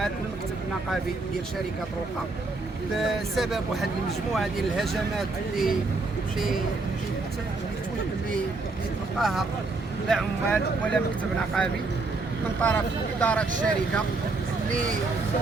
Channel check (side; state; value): left; quieter; 3.6 dB